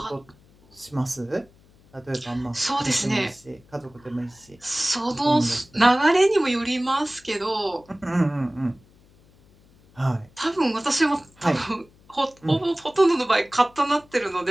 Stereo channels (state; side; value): noise; left; hum, 29 dB below the sound